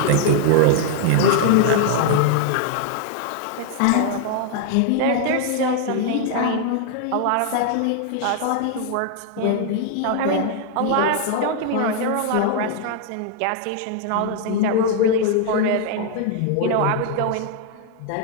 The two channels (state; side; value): different; both; correlation 0.00